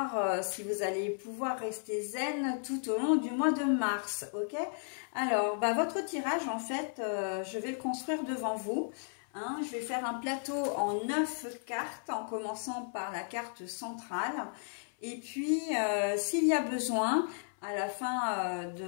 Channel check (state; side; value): silent; right; 55 dB below the other